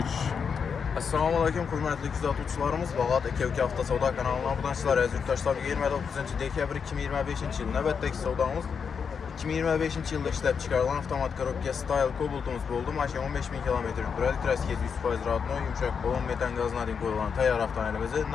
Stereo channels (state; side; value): quieter; right; 6.3 dB